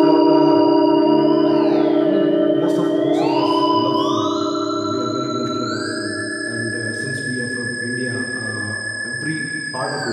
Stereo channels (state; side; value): identical; both; correlation 1.00